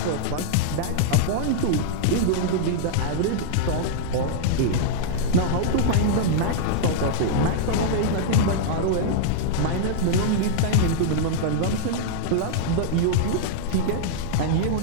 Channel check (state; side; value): different; both; correlation -0.01